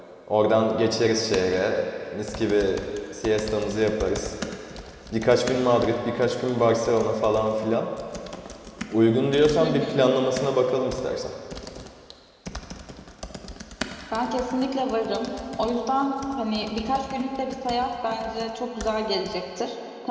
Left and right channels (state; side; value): identical; both; correlation 1.00